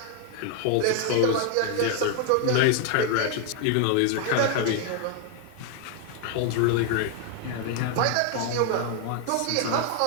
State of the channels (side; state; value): both; different; correlation 0.00